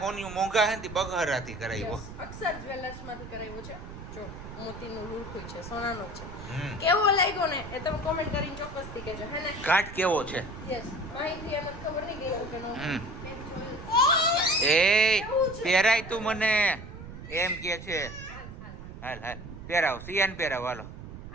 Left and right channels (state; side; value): noise; right; rumble, 12 dB below the sound